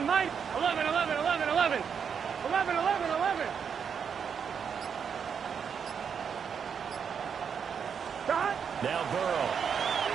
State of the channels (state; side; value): quieter; left; 7.0 dB